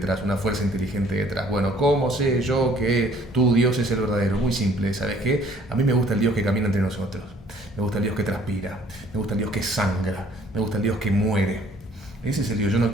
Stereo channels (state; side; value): normal; both; correlation 0.58